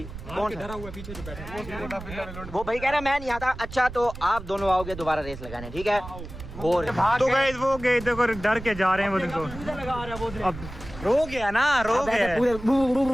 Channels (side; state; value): right; noise; rumble, 12 dB below the sound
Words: कौन डरा हुआ है पीछे जो बैठा है? वो भाई कह रहा मैं नहीं आता। अच्छा तो आप दोनों आओगे दोबारा रेस लगाने, ठीक है? और तो गाइस वो गए देखो, डर के जा रहे हैं वो देखो। अब रो गया ना, रो गया।